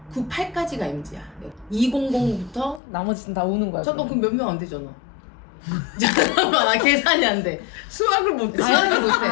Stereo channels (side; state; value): right; drops out; at 2.8 s